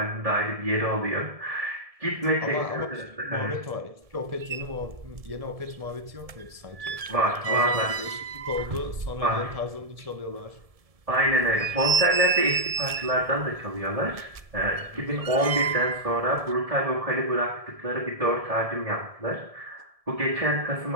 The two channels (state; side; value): late; left; 1.7 ms